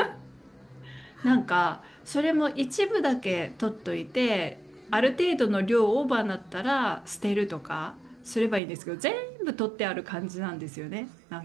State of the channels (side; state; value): left; drops out; at 8.6 s